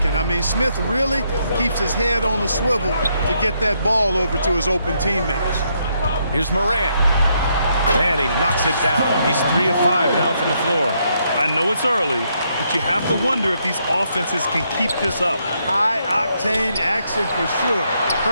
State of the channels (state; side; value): inverted; both; correlation -0.76